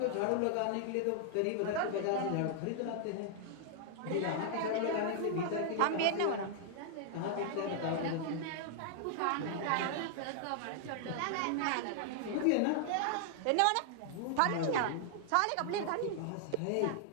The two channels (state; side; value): different; both; correlation 0.00